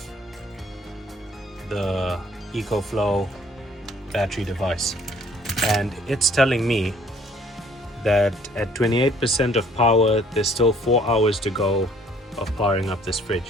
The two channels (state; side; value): normal; both; correlation 0.58